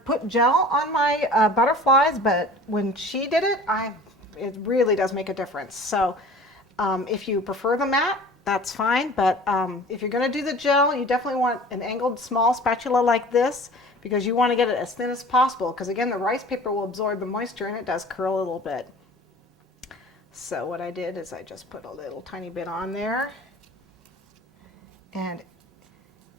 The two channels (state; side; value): normal; both; correlation 0.44